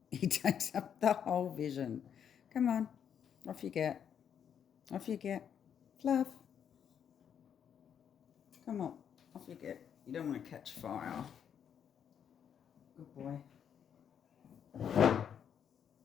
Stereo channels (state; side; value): quieter; right; 8.3 dB